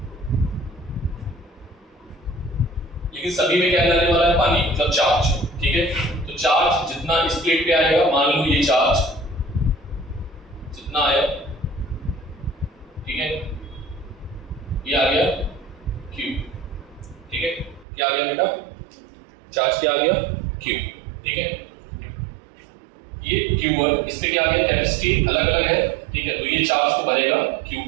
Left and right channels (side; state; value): left; drops out; at 17.9 s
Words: लेकिन सभी में क्या जाने वाला है, पानी, मतलब चार्ज, ठीक है। तो चार्ज जितना इस प्लेट पे आएगा, मान लो ये चार्ज जितना आया, ठीक है, ये आ गया Q, ठीक है, क्या आ गया बेटा, चार्ज क्या आ गया, Q, ठीक है। ये Q1, इसमें क्या आ गया, कैपेसिटी अलग अलग है, ठीक है, तो ये चार्ज को भरेगा